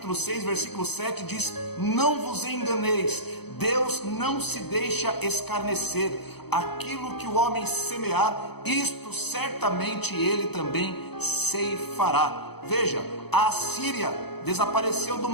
6, versículo 7 diz: não vos enganeis, Deus não se deixa escarnecer. Aquilo que o homem semear, isto certamente ele também ceifará. Veja, a Assíria desapareceu do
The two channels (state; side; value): late; right; 0.98 ms